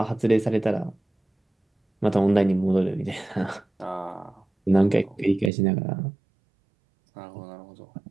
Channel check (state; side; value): drops out; left; at 5.5 s